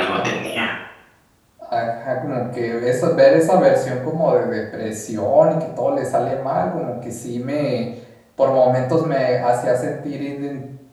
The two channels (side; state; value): both; identical; correlation 1.00